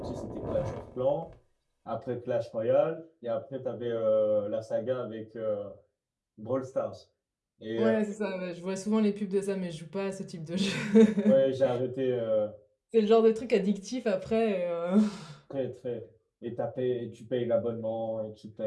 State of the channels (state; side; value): identical; both; correlation 1.00